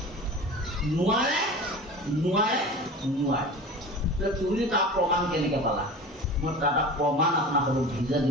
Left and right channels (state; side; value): normal; both; correlation 0.35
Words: নোৱাৰে তুমি তাৰ প্ৰমাণ কেনেকে পালা মই তাৰ এটা প্ৰমাণ আপোনালোকক দিছোঁ যে